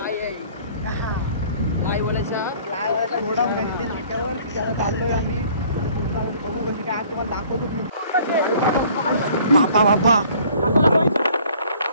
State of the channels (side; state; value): both; inverted; correlation -0.54